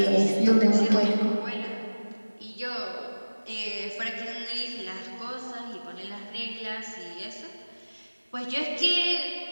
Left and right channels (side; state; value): both; inverted; correlation -1.00